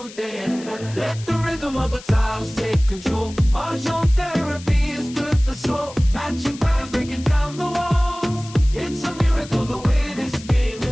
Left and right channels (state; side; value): noise; left; hiss, 17 dB below the sound